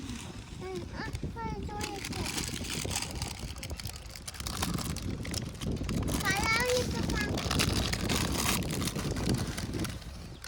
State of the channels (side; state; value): both; identical; correlation 1.00